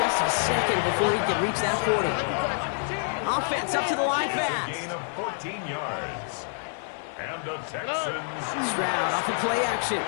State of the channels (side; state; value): right; silent; 57 dB below the other